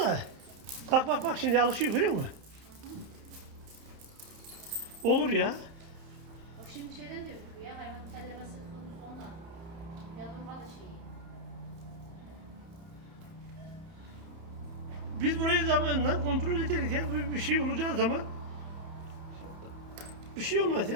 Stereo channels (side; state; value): left; late; 30 ms